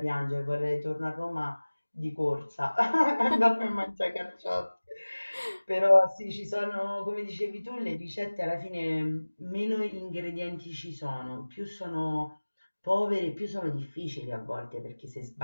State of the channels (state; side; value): inverted; both; correlation -1.00